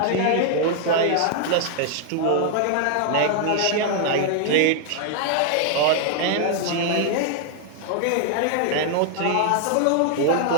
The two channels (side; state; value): both; different; correlation 0.00